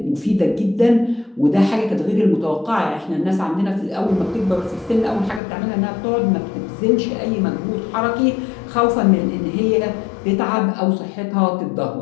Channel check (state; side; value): drops out; right; at 5.4 s